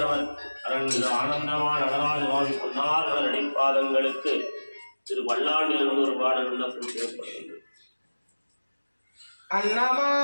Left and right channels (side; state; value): both; inverted; correlation -1.00